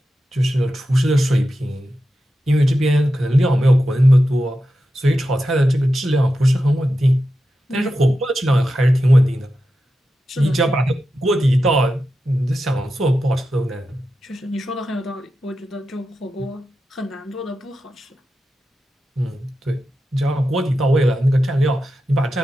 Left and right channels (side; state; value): both; normal; correlation 0.90